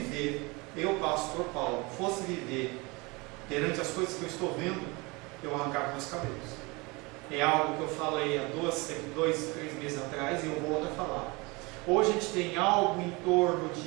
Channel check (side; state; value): left; quieter; 25.9 dB